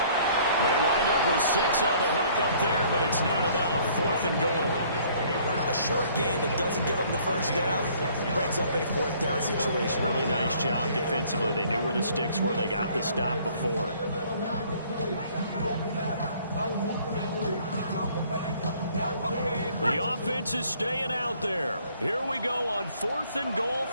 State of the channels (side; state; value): both; inverted; correlation -0.58